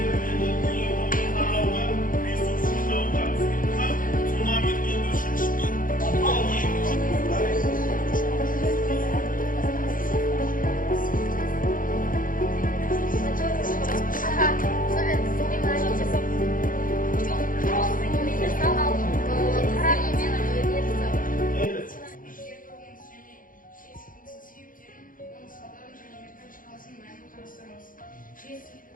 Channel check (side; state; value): right; late; 0.40 ms